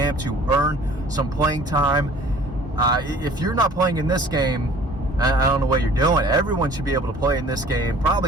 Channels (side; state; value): both; normal; correlation 0.50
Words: to earn some playing time. If you're not playing in this game, I don't know what you're doing. Everyone should be able to play in this game,